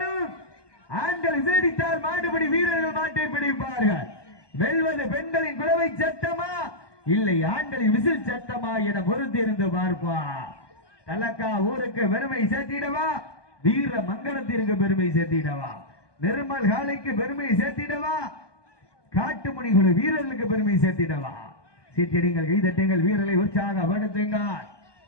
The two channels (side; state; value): right; late; 1.2 ms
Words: ஆண்கள் விசேடித்தால் மாடுபடி வீரர்கள் மாட்டை பிடிப்பார்கள். வெல்வது பெண்களின் குறவை சத்தமா இல்லை ஆண்களின் விசில் சத்தமா என பொறுத்திருந்து பார்ப்பா. தலக்கா ஊருக்கு பெருமை சேர்த்திடவா, வீர மங்களத்திற்கு பெருமை சேர்த்திடவா, நிர்மல் காலைக்கு பெருமை சேர்த்திடவா, காட்டுமணி குழு வீரர்களுக்கு பெருமை சேர்த்திடவா. சீட்டியடிங்கள், கைதட்டுங்கள், வீரர்களை உற்சாகப்படுத்துங்கள்.